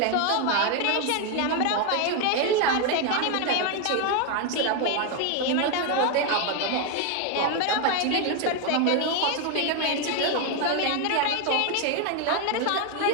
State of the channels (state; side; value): different; both; correlation 0.01